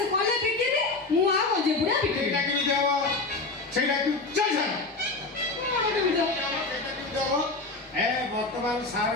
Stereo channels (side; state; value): right; quieter; 3.5 dB